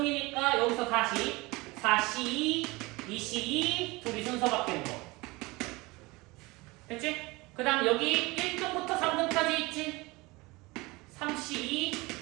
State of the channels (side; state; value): left; quieter; 23.1 dB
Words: 여기서 다시 4C2, 2C2 둘이 순서 바뀌는 거. 됐지? 그 다음 여기 1등부터 3등까지 있지? 3C2,